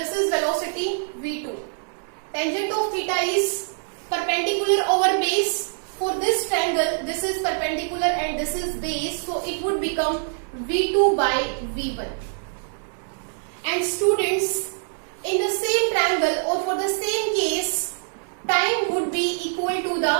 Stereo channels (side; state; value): left; silent; 62 dB below the other